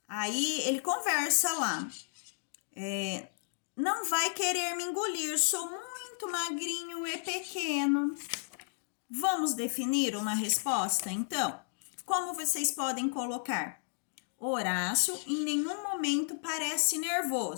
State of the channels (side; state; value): right; silent; digital silence